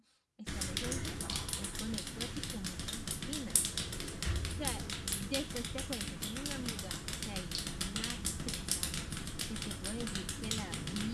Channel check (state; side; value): identical; both; correlation 1.00